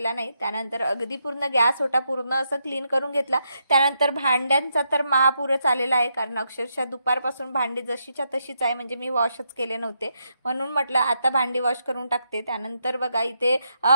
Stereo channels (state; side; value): inverted; both; correlation -0.80